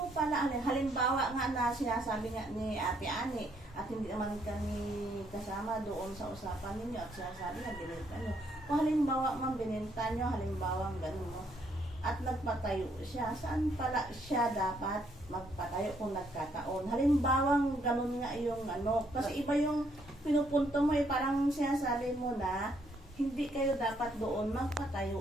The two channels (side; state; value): both; normal; correlation 0.71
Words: pala, halimbawa nga na sinasabi nga ni Ate Ani, at hindi naman kami kasama doon sa usapan ninyo at sinasabi na binenta nyo. Kung halimbawa man binenta nyo, halimbawa gano'n mo, at nagpatayo siya, saan pala siya dapat magpatayo kung nagkataon? Halimbawang ganun nga yung ano, kasi iba yung pinupunto mo parang sinasabi mo na hindi kayo dapat doon